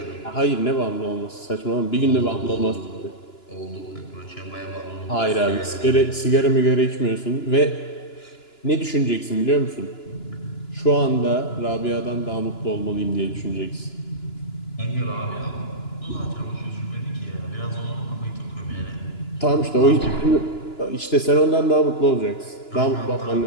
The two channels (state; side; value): late; right; 2.9 ms